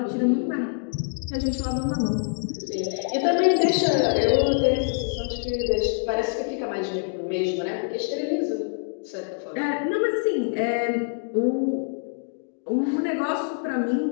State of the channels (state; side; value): silent; right; 62 dB below the other